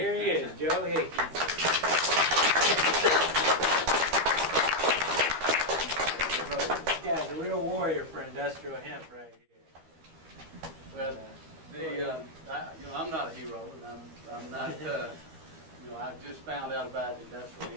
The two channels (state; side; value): late; left; 13 ms